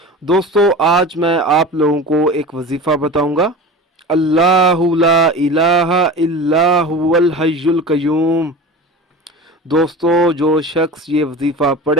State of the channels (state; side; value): normal; both; correlation 0.33